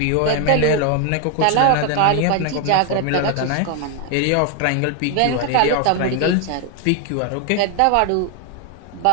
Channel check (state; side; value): different; both; correlation 0.01